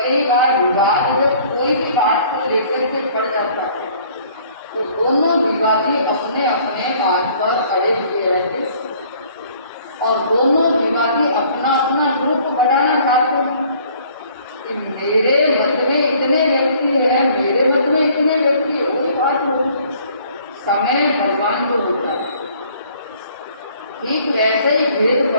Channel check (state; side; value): inverted; both; correlation -0.57